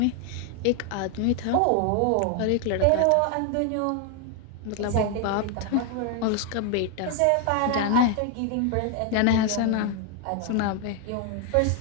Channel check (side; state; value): both; different; correlation 0.00